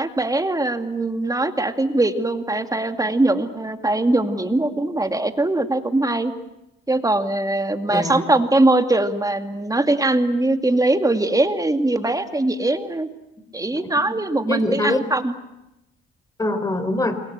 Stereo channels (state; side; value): normal; both; correlation 0.75